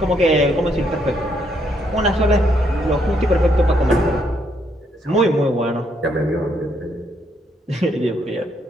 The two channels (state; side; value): normal; both; correlation 0.73